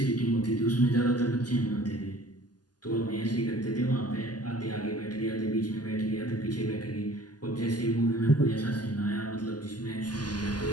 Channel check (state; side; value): late; right; 0.70 ms